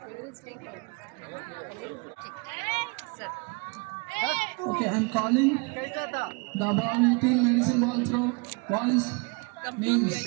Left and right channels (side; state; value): left; quieter; 30.6 dB